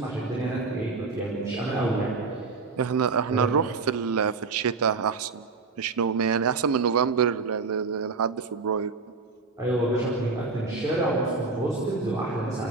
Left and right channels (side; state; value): left; quieter; 4.3 dB